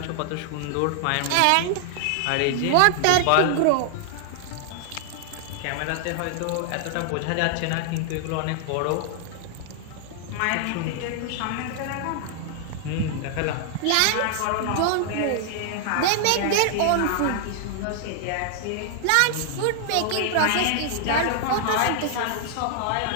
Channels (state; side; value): different; both; correlation 0.00